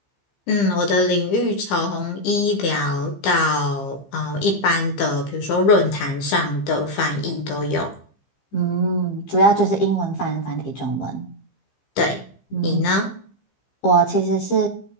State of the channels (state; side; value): late; right; 15 ms